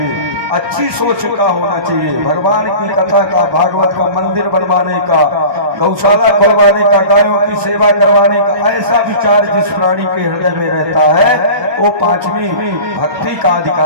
अच्छी सोच का होना चाहिए, भगवान की कथा का, भागवत का मंदिर बनवाने का, गौशाला खुलवाने का, गायों की सेवा करवाने का, ऐसा विचार जिस प्राणी के हृदय में रहता है वो पांचवी भक्ति का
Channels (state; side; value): late; left; 1.2 ms